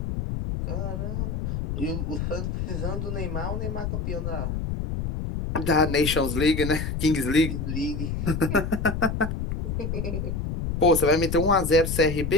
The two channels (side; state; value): left; noise; rumble, 3 dB below the sound